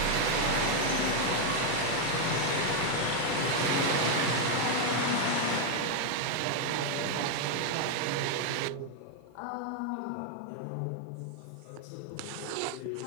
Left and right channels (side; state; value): both; different; correlation 0.01